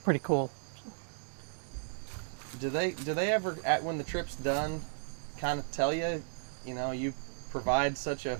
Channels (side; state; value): left; silent; digital silence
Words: pretty cool. Do they ever, when the trip's done, kind of tell you, you provide such a